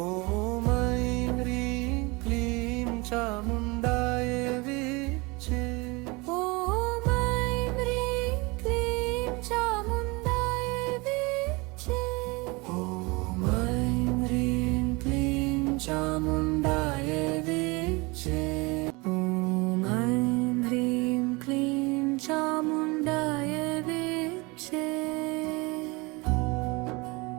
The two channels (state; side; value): quieter; left; 25.8 dB